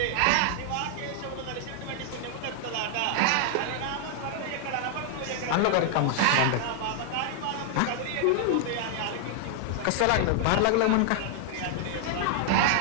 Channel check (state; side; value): different; both; correlation 0.00